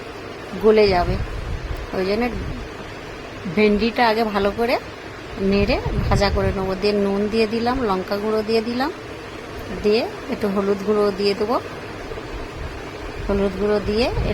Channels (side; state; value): both; identical; correlation 1.00